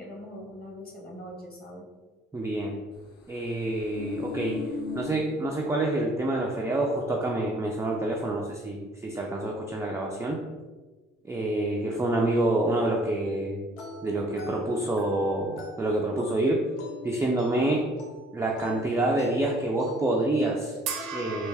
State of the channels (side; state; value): both; normal; correlation 0.59